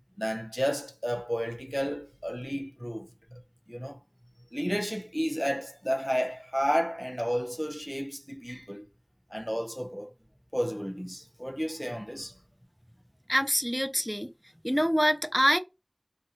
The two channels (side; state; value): both; identical; correlation 1.00